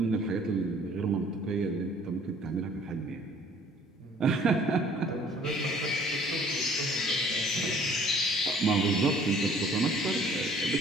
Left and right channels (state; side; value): normal; both; correlation 0.55